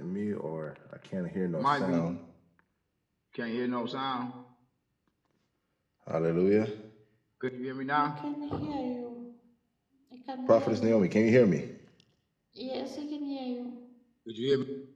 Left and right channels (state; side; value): identical; both; correlation 1.00